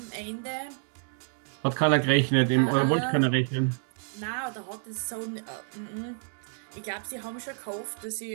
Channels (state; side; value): silent; left; digital silence